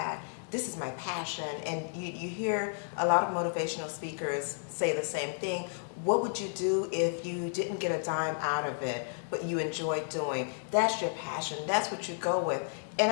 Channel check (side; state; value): right; silent; digital silence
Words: this is my passion, and you hear a lot of motivational speakers say the same thing. What would you do if you didn't get a dime out of it, but you enjoyed doing? That's your passion. That's what you go with. And